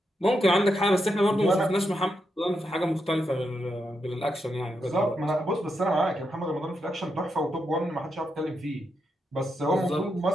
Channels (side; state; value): both; normal; correlation 0.84